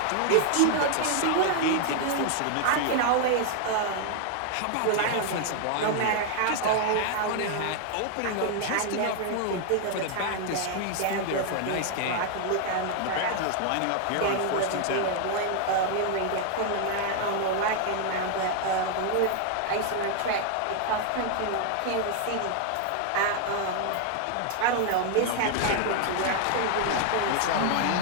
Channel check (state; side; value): different; both; correlation 0.00